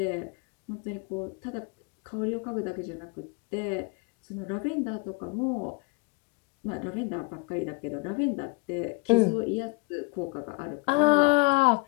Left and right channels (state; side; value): quieter; right; 28.5 dB